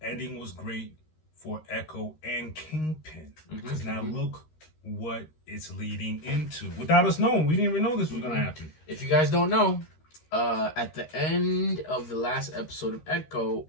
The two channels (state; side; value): late; right; 13 ms